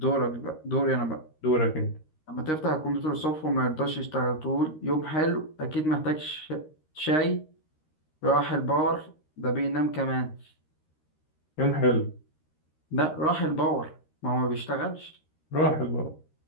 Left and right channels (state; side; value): late; right; 13 ms